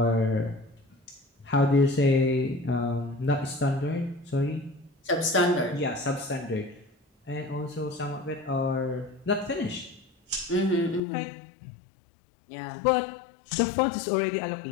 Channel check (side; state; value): right; drops out; at 11.0 s